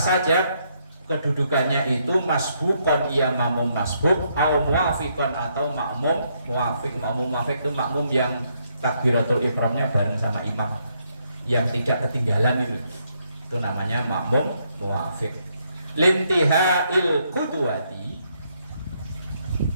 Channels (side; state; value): both; inverted; correlation -0.74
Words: kedudukannya itu masbukon, ia makmum masbuk, atau muafikon atau makmum muafik. Makmum muafik itu makmum yang takbiratul ihramnya bareng sama imam, yang tidak ketinggalan itu namanya makmum muafik. Limtihail qudwati,